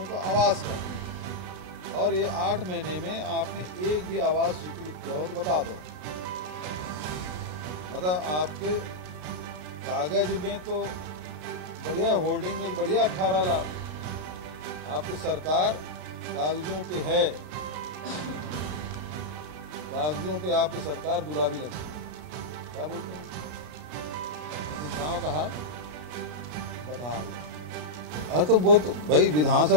का आवास का है। और ये 8 महीने में आपने एक भी आवास स्वीकृत किया हो तो बता दो। मतलब आपके कागज में तो बढ़िया, होर्डिंग में तो बढ़िया 18 लाख, आपकी सरकार कागजों पे है, कागजों पे आपकी सरकार गुलाबी लगती है। क्या बोलते हैं? लेकिन गांव का हाल बदहाल है। अरे तो वो तो भाई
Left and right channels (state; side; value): late; left; 33 ms